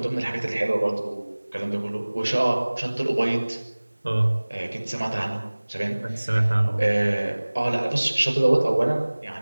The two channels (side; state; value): both; inverted; correlation -1.00